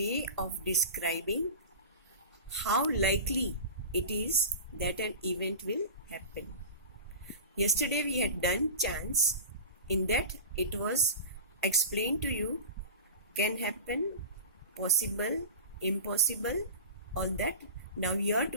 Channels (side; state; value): both; inverted; correlation -0.32